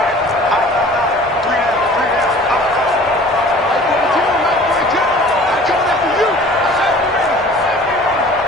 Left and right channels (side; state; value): both; normal; correlation 0.47